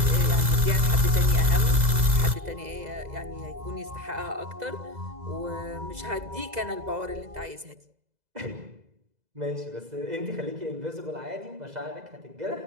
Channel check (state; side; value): late; left; 2.0 ms